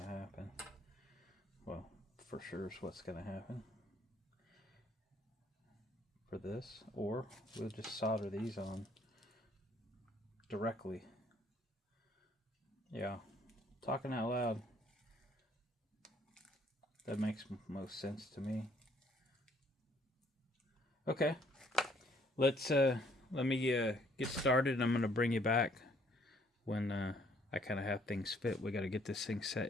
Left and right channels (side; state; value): both; normal; correlation 0.64